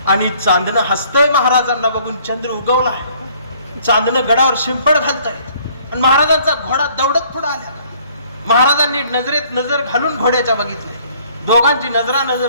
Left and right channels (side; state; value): both; inverted; correlation -0.59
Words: आणि चांदणं हसतंय महाराजांना बघून. चंद्र उगवला आहे. चांदणं गडावर शिंपड घालतंय आणि महाराजांचा घोडा दौडत पुढे आला. महाराजांनी नजरेत नजर घालून घोड्याच्या बघितले. दोघांची